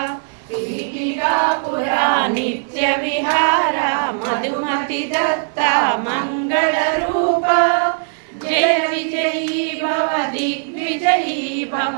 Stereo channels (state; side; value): silent; left; 67 dB below the other